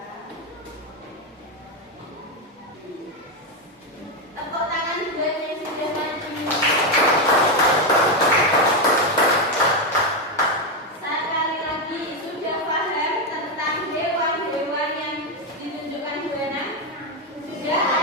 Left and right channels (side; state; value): both; normal; correlation 0.07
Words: Tepuk tangan buat yang sudah maju. Sekali lagi, sudah paham tentang hewan-hewan yang ditunjukkan Bu Ana? Sudah